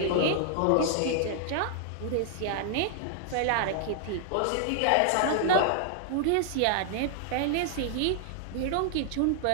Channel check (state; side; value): different; both; correlation 0.00